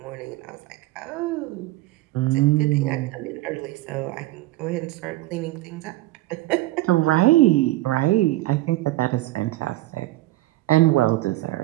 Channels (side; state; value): left; quieter; 17.7 dB